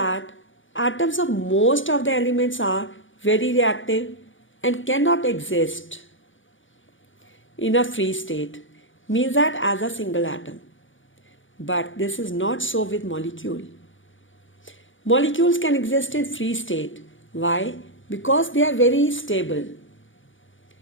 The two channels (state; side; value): late; right; 0.57 ms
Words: atoms of most of the elements are very reactive and cannot exist in a free state, means that as a single atom. But this is not so with molecule. Molecules can exist in free state. Why? Because they are very stable.